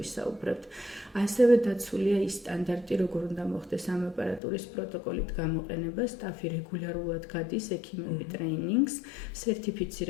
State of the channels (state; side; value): drops out; right; at 4.4 s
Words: ასევე დაცულია ის სტანდარტი, როგორ უნდა მოხდეს ამ აპარატურის პროტოკოლით გამოყენება, სტაფი რეგულარულად გადის ექიმები ტრეინინგს,